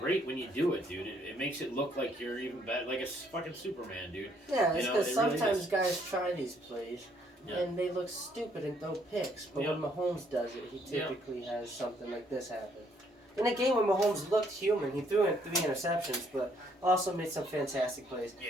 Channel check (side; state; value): both; normal; correlation 0.68